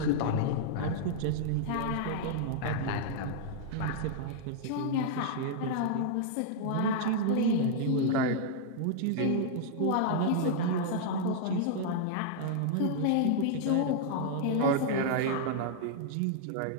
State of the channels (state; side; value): different; both; correlation -0.01